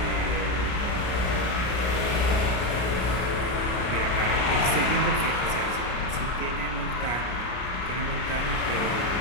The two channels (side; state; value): right; late; 33 ms